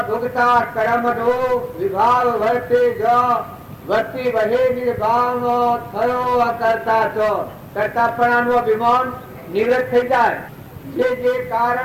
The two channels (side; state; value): both; identical; correlation 1.00